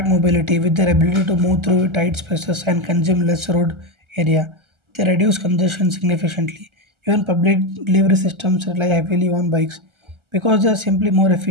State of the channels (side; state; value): left; late; 1.3 ms